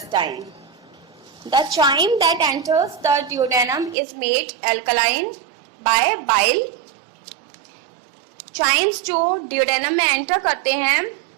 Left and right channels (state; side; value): drops out; left; at 4.0 s